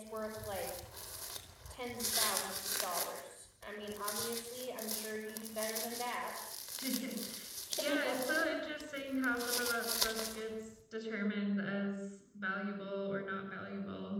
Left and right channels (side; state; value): both; identical; correlation 1.00